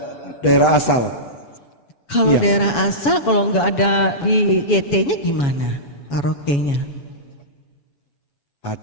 daerah asal. Kalau daerah asal, kalau nggak ada di YT-nya gimana? Karaoke-nya?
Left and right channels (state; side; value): late; right; 7.1 ms